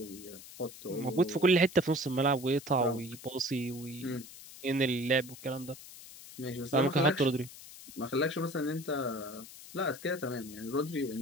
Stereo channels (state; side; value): noise; left; hiss, 16 dB below the sound